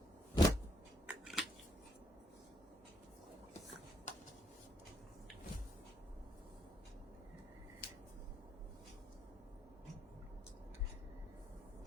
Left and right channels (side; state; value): both; normal; correlation 0.73